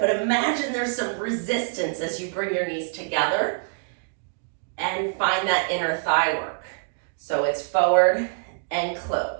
imagine there's some resistance as you bring your knees together and find that inner thigh work. So it's forward and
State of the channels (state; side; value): silent; left; digital silence